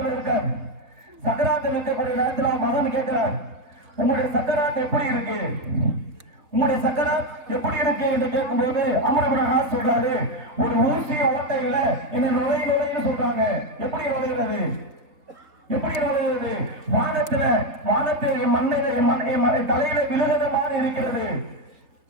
இருக்கார். சக்கராத்தில் இருக்கக்கூடிய நேரத்தில் அவன் மகன் கேட்கிறார், உங்களுடைய சக்கராத் எப்படி இருக்கு? உங்களுடைய சக்கராத் எப்படி இருக்கு என்று கேட்கும்போது அமர் இப்னு ஆஸ் சொல்றாரு, ஒரு ஊசிய ஓட்டையில என்ன நுழைன்னு சொல்றாங்க. எப்படி நுழைகிறது? வானத்தில் மண்ணை தலையில விழுகிற மாதிரி இருக்கிறது.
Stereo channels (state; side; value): late; left; 3.7 ms